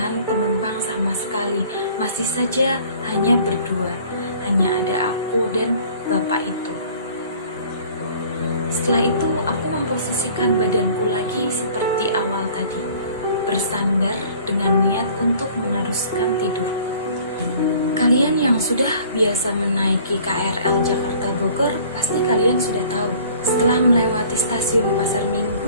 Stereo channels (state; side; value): inverted; both; correlation -0.51